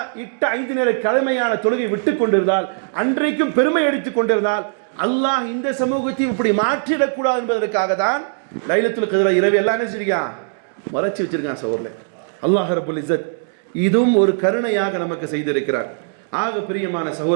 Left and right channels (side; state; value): left; silent; digital silence